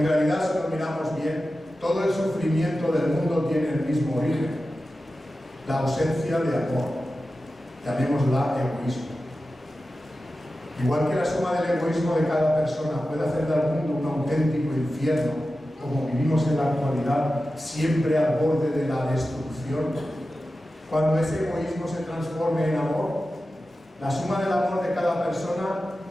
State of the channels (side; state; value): both; normal; correlation 0.93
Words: realidad, si lo miramos bien, todo el sufrimiento del mundo tiene el mismo origen: la ausencia de amor. Llamémosla egoísmo. Igual que la suma del egoísmo de cada persona puede hacer del mundo un auténtico infierno, como vivimos en la actualidad, siempre al borde de la destrucción, cuando ese egoísmo se transforme en amor, la suma del amor de cada persona